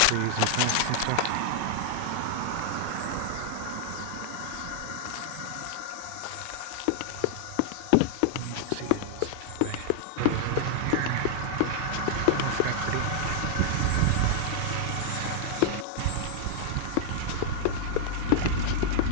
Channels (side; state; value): both; different; correlation 0.00